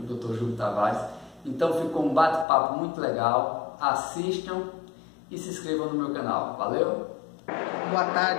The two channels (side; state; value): right; drops out; at 2.5 s